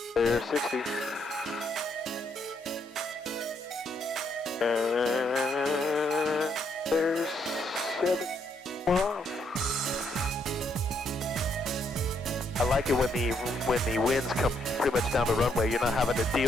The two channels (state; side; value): normal; both; correlation 0.74